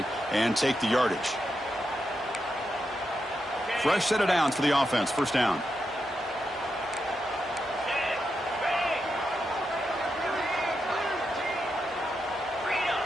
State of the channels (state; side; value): normal; both; correlation 0.85